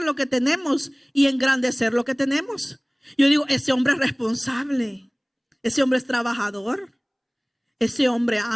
lo que tenemos y engrandecer lo que tenemos? Yo digo, ese hombre es responsable, ese hombre es trabajador, ese hombre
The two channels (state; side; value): identical; both; correlation 1.00